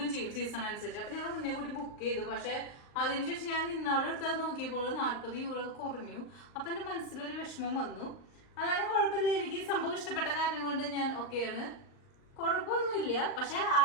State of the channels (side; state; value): right; late; 38 ms